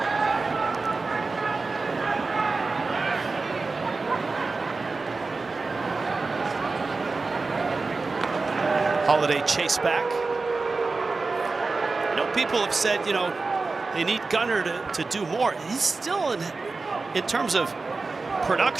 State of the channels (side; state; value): left; quieter; 3.9 dB